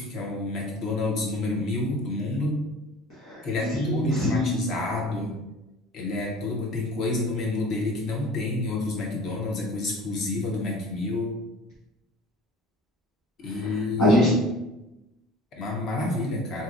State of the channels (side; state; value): both; normal; correlation 0.43